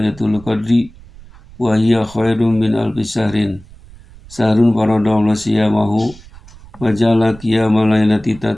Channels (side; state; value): right; noise; rumble, 21 dB below the sound